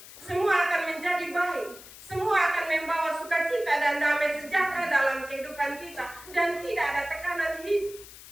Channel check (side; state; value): left; noise; hiss, 17 dB below the sound